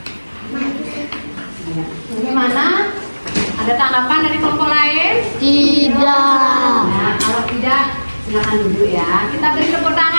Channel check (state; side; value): inverted; both; correlation -1.00